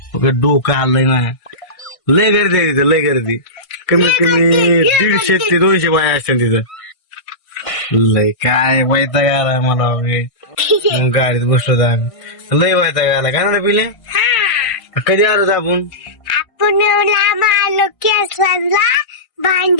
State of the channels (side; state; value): right; late; 1.5 ms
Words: डोकं आलंय ना. लय गर्दी आहे तिथं, लय गर्दी. कमीत कमी 150 ते 200 बाया असतील तिथं. लय काय वैताग आलाय मला. मग गाडीत बसलो तर आम्ही. लय वैताग आला काय ना पिले. कधी आलो आपण आलो केसला